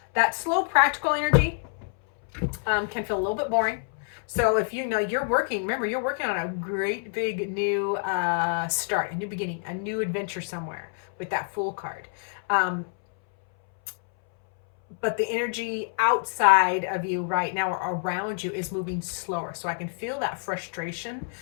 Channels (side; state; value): right; silent; 60 dB below the other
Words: that slow practical energy can feel a little bit boring. So if you know you're working, remember you're working on a great big new start, a new beginning, a new adventure somewhere with that Fool card. Um, but the energy outside of you right now or around you is moving slower. So I can feel that frustration.